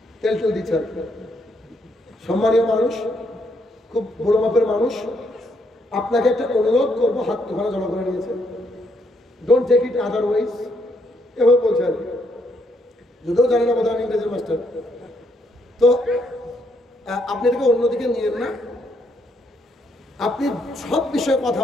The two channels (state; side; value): normal; both; correlation 0.74